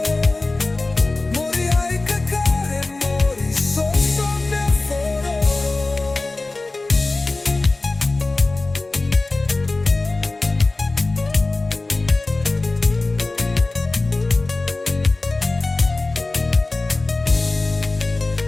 Mori hai kakare mori so me aforo.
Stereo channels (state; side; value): quieter; right; 3.2 dB